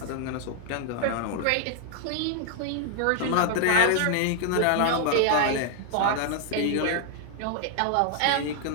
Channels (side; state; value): both; different; correlation 0.00